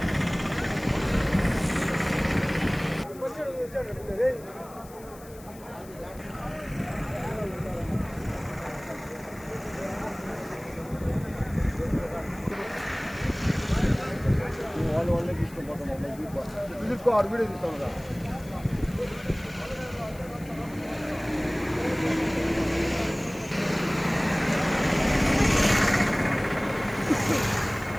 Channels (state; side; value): noise; left; hiss, 21 dB below the sound